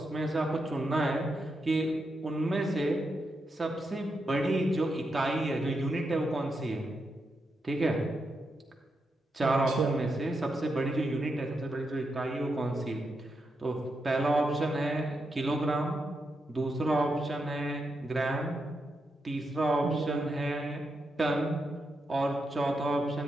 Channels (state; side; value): normal; both; correlation 0.84